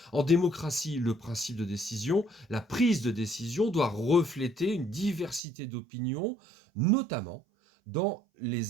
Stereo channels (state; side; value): drops out; left; at 5.4 s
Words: en démocratie, le principe de décision, la prise de décision doit refléter une diversité d'opinions, notamment dans